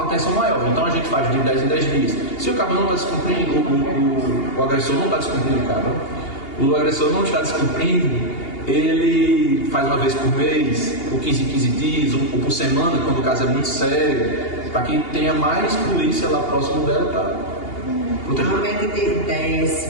atenção maior. Então a gente faz de 10 em 10 dias. Se o cara não está descumprindo, o agressor não está descumprindo, o agressor não está descumprindo, ele faz uma vez por mês, ou 15 em 15 dias, ou por semana, quando o caso é muito sério, para que tenha mais polícia lá próximo dela para proteger. Normalmente tem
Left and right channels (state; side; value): late; right; 2.8 ms